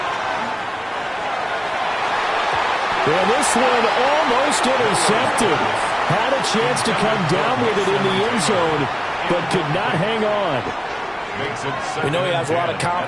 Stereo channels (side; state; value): both; identical; correlation 1.00